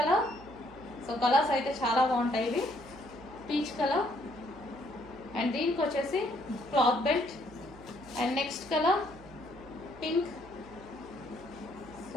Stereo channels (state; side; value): noise; right; hum, 20 dB below the sound